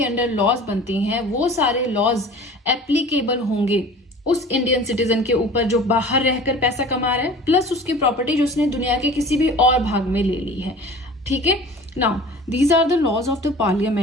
अंडर लॉज बनती हैं, वो सारे लॉज एप्लीकेबल होंगे उस इंडियन सिटीजन के ऊपर जो बाहर रहकर पैसा कमा रहा है, प्लस उसकी प्रॉपर्टी जो उसने दुनिया के किसी भी और भाग में ले ली है, ठीक है। Now, these are the laws of the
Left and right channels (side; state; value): both; normal; correlation 0.42